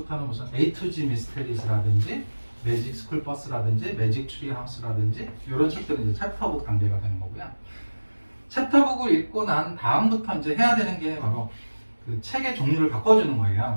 무슨 A to G 미스테리스라든지 매직 스쿨 버스라든지 매직 트리 하우스라든지 이런 책들은 이제 챕터북 단계가 되는 거고요. 챕터북을 읽고 난 다음부터 이제 해야 되는 게 바로 그 책의 종류를 바꿔주는 거예요.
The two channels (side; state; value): both; inverted; correlation -1.00